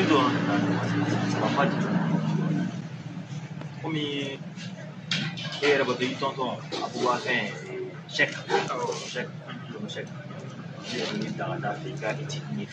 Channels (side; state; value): both; identical; correlation 1.00